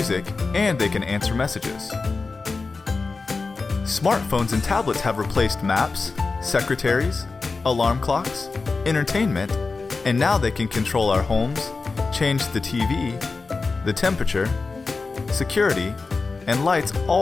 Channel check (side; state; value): right; quieter; 4.1 dB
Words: and they can answer messages. Smartphones and tablets have replaced maps, secretaries, alarm clocks, entertainment, and now they can control our homes, change the TV, the temperature, security, and lights